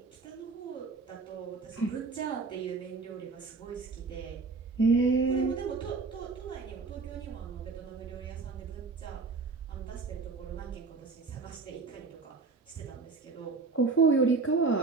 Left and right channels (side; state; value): left; quieter; 4.2 dB